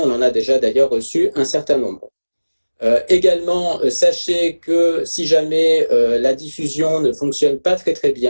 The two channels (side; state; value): both; inverted; correlation -1.00